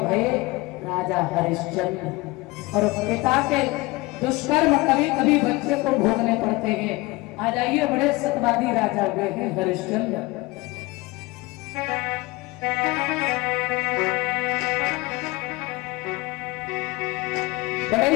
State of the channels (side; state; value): right; quieter; 22.1 dB